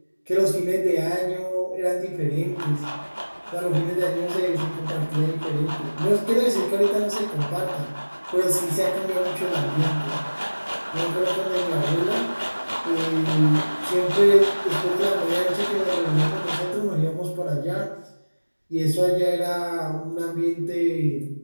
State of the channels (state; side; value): inverted; both; correlation -1.00